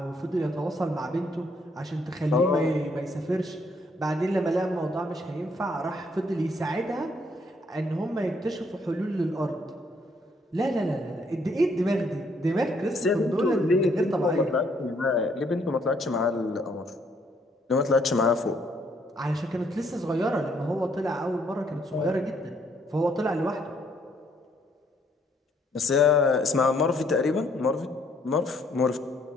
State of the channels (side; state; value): both; normal; correlation 0.68